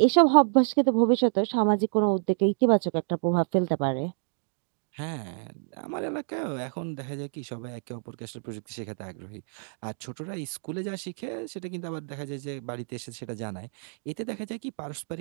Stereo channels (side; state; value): left; silent; 59 dB below the other